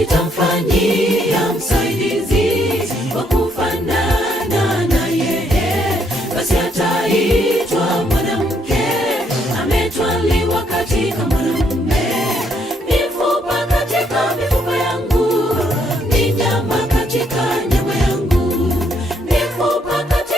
msaidizi wa kufanana na yeye, basi ataitwa mwanamke, ametwaliwa katika mwanamume. Mifupa katika mifupa yangu, ni nyama katika nyama yangu, mifupa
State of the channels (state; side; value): normal; both; correlation 0.72